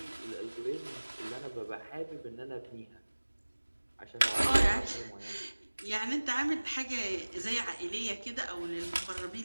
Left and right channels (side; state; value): both; inverted; correlation -1.00